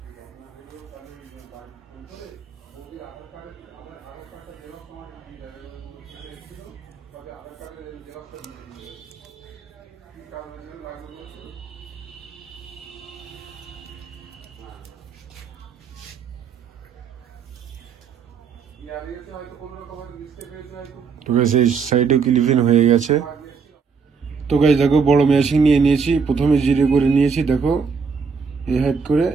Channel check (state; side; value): quieter; left; 5.6 dB